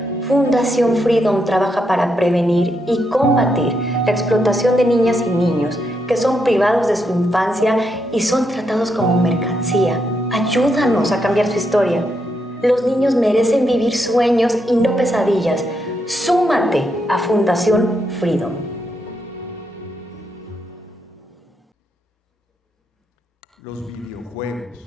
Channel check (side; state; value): both; normal; correlation 0.81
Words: Fundación Freedom trabaja para prevenir y combatir la explotación de niñas y niños que son privados de su infancia y son tratados como mercancía. Ayúdanos a cambiar su historia. Los niños merecen vivir sueños y no pesadillas. Súmate a Fundación Freedom. Los